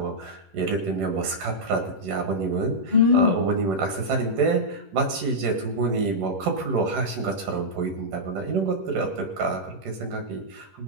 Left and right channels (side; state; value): left; late; 10 ms